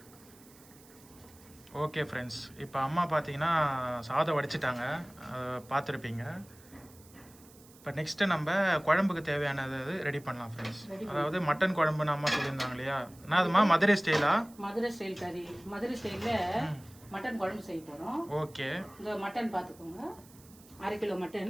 ஓகே ஃப்ரெண்ட்ஸ், இப்போ அம்மா பார்த்தீங்கன்னா சாதம் வடிச்சிட்டாங்க, பார்த்துருப்பீங்க. இப்போ நெக்ஸ்ட்டு நம்ம குழம்புக்கு தேவையானது ரெடி பண்ணலாம் ஃப்ரெண்ட்ஸ். அதாவது மட்டன் குழம்புன்னு அம்மா சொல்லியிருந்தாங்க இல்லையா, நான் அதுமா மதுரை ஸ்டைலா? மதுரை ஸ்டைல் கறி, மதுரை ஸ்டைலில் மட்டன் குழம்பு செய்ய போகிறோம். ஓகே. இந்த மட்டன் பார்த்துக்கோங்க, 1/2 கிலோ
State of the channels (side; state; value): right; noise; hiss, 24 dB below the sound